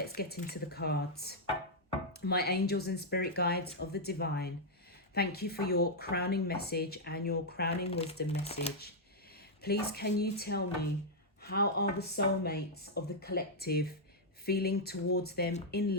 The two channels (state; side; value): normal; both; correlation -0.05